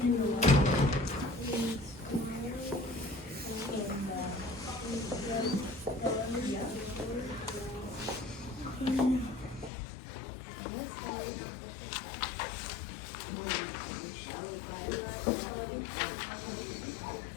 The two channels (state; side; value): drops out; right; at 9.7 s